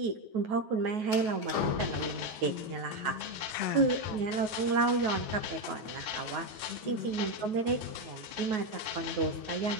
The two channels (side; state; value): left; late; 9.3 ms